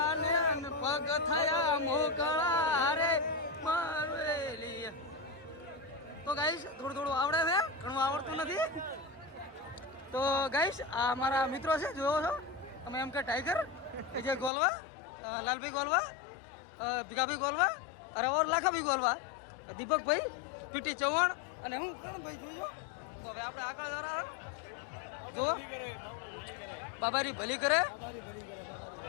પગ થયા મોકળા રે મારેલી. તો ગાઈશ થોડું આવડે છે, ઘણું આવડતું નથી. તો ગાઈશ આ અમારા મિત્રો છે, જોવો છો તમે એમ કે ટાઈગર, વિજય ગોલવા, લાલભાઈ ગોલવા, ભીખાભાઈ ગોલવા, અરે ઓર લાખાભાઈ ગોલવા, દીપકભાઈ, પીટી ચૌહાણ અને હું કરણભાઈ જોઈજો. તો હવે આપણે આગળ જરા બાબારી ભલી કરે.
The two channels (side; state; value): right; drops out; at 14.5 s